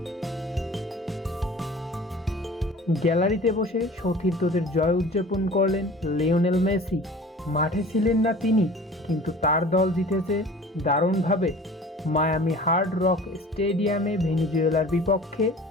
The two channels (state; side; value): normal; both; correlation 0.43